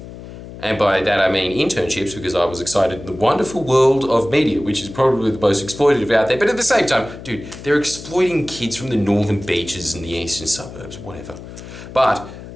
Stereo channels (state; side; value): noise; left; hum, 14 dB below the sound